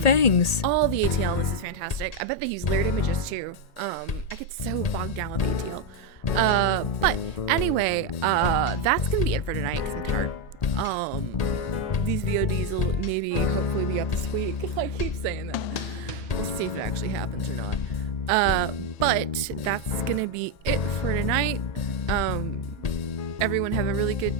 All the ATL in this is fantastic. I bet they use layered images too. I get so bogged down with the ATL. But anyway, that's gonna be it for tonight because I'm tired. These VODs will maybe hopefully be up this week. I keep saying that. We'll see if it actually happens or not. But that's gonna be it for tonight. Everyone have a really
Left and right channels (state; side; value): late; right; 1.8 ms